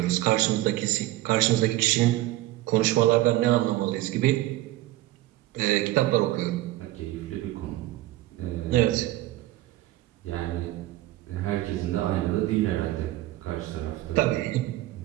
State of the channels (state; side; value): quieter; left; 16.4 dB